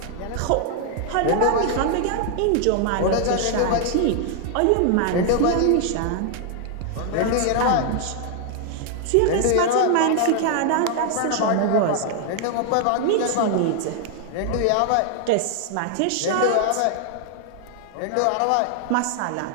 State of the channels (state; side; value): different; both; correlation 0.00